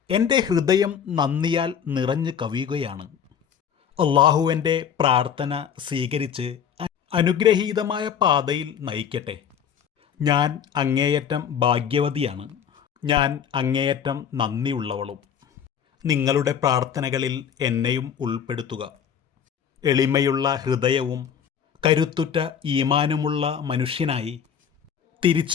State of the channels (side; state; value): right; quieter; 8.2 dB